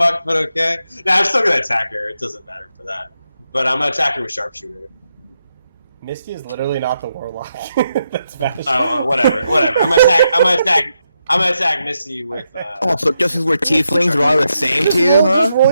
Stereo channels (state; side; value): inverted; both; correlation -0.83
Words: but okay. Nah, I'm still going to attack her. It doesn't matter for that. But I'm going to attack her with Sharpshooter. Misty is literally not the Warlock. That's bad. Oh, whatever. I'm gonna attack Misty with. Oh, so just because we're tieflings, we're all the same to you, huh? Just